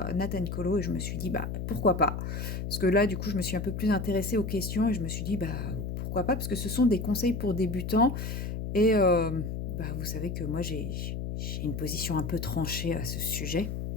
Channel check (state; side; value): noise; left; hum, 4 dB below the sound